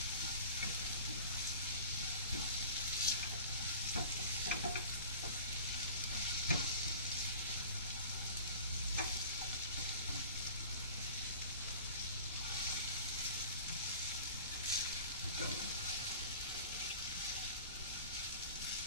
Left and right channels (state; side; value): inverted; both; correlation -0.40